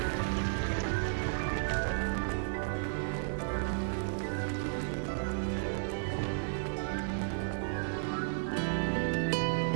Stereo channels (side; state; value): left; silent; 56 dB below the other